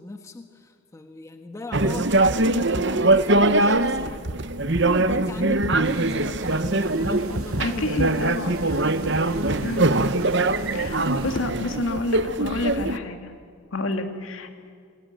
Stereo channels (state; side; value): normal; both; correlation 0.06